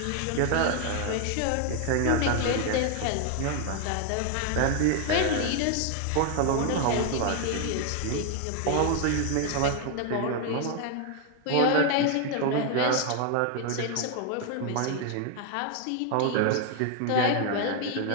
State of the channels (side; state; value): both; different; correlation 0.00